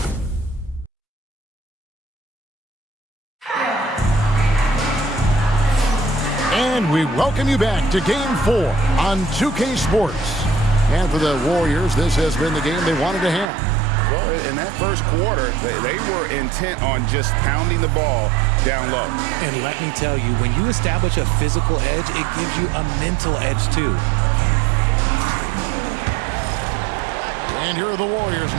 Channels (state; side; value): drops out; left; at 13.5 s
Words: And we welcome you back to Game 4 on 2K Sports. And for the Warriors, this has been the game they wanted to have. Well, in that first quarter, they were intent on just pounding the ball down low. And let me tell you, when you establish a physical edge, it gives you a mental edge too. And here are the Warriors